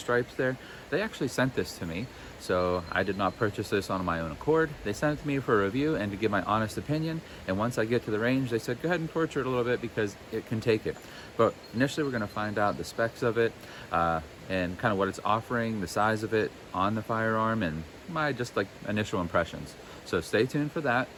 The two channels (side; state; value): both; identical; correlation 1.00